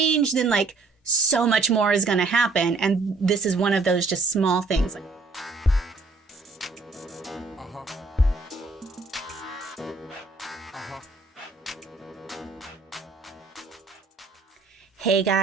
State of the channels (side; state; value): left; quieter; 3.8 dB